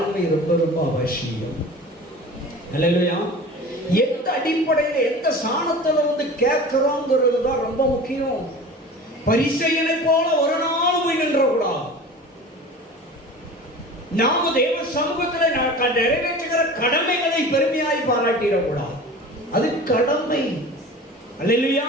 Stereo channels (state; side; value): normal; both; correlation 0.38